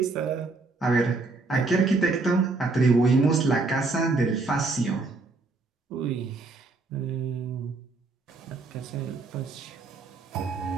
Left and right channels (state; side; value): quieter; left; 3.6 dB